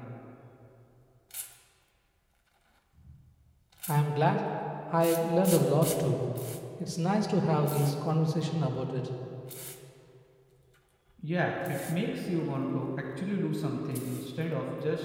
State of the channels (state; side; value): identical; both; correlation 1.00